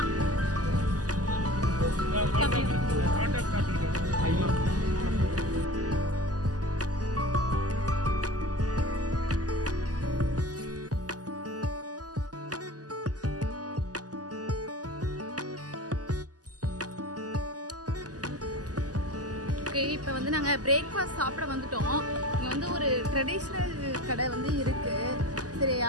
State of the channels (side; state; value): left; late; 0.67 ms